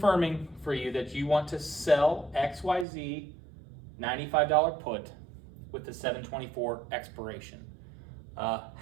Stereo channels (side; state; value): left; drops out; at 2.9 s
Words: for you that you want to sell XYZ $95 put with the 7/24 expiration.